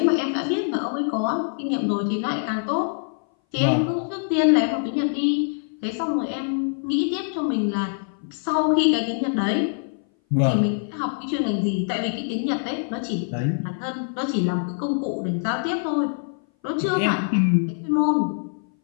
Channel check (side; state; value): right; silent; 59 dB below the other